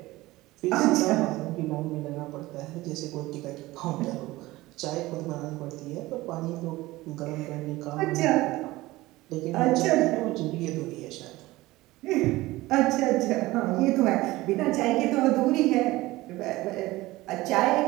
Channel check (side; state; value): left; quieter; 18.9 dB